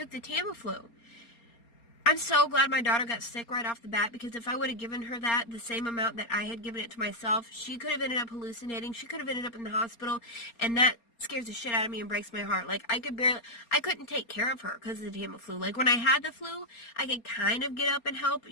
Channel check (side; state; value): right; late; 4.3 ms